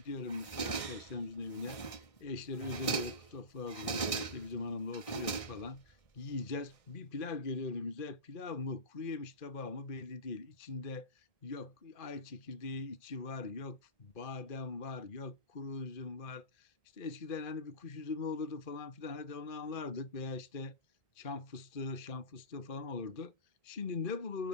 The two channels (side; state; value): right; late; 1.6 ms